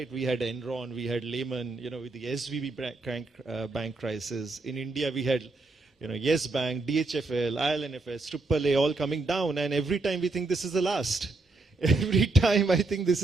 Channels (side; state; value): left; quieter; 3.4 dB